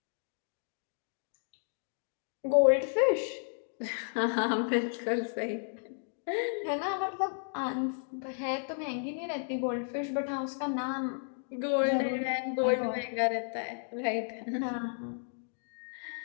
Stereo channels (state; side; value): silent; right; digital silence